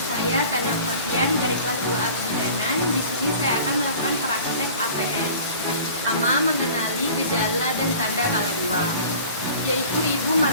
Tanda Oktavian dari kelas 2A Kebidanan. Di sini saya akan melakukan praktek APS. Pertama, mengenali gejala dan tanda kala 2, yaitu ibu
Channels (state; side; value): inverted; both; correlation -0.44